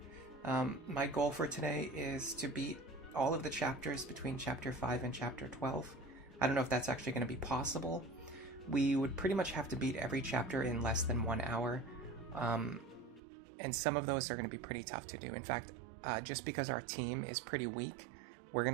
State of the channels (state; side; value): drops out; left; at 13.2 s